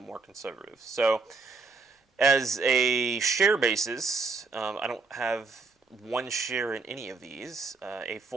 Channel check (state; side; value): quieter; left; 4.2 dB